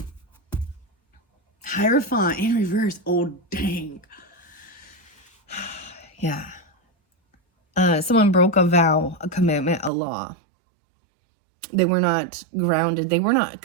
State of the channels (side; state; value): left; drops out; at 9.9 s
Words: Hierophant in reverse. Oh, dang. Yeah. Someone broke a vow, a commitment, a law. They were not grounded. They were not